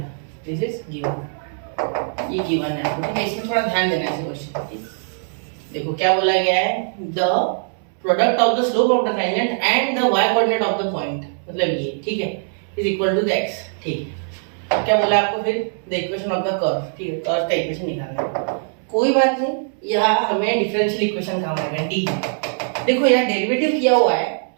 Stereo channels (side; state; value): left; silent; 65 dB below the other